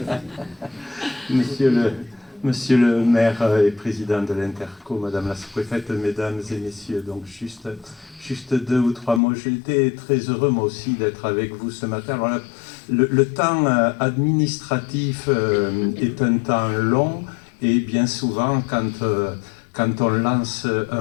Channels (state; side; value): drops out; right; at 9.2 s